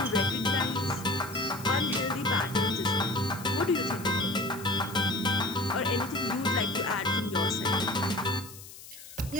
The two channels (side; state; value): left; noise; hiss, 16 dB below the sound